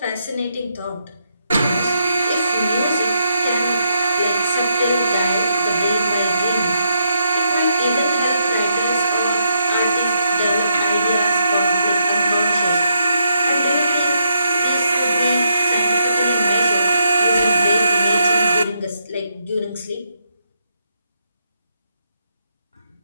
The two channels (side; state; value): both; inverted; correlation -0.78